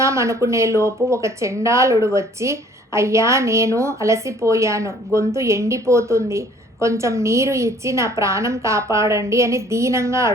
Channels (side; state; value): both; normal; correlation 0.56